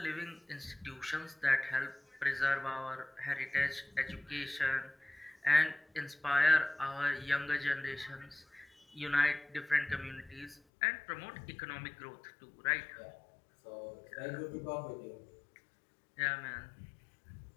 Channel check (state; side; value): drops out; right; at 10.6 s